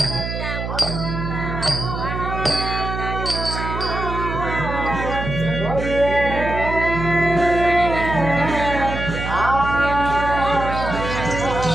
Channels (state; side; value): noise; right; hum, 5 dB below the sound